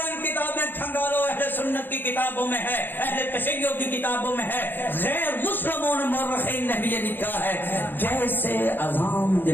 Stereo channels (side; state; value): right; late; 0.093 ms